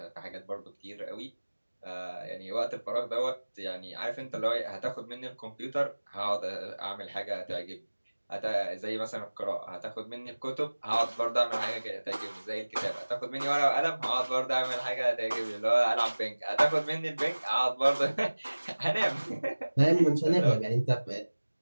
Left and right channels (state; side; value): inverted; both; correlation -1.00